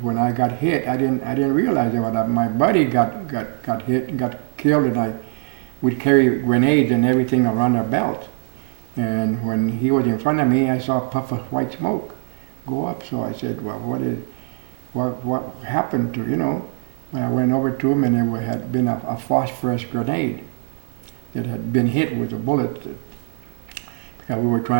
when I got hit. I didn't realize that my buddy got hit and got killed, and we'd carry grenades and everything around our belt. And when he was in front of me, I saw a puff of white smoke go up. So I said, "Well, what happened to you know?" I went over to him, and there had been a phosphorus grenade that had been hit with a bullet, because we were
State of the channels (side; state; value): left; silent; 64 dB below the other